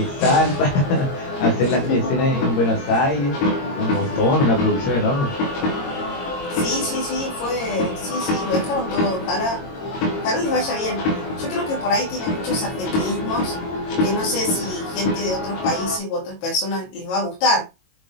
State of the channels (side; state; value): right; late; 22 ms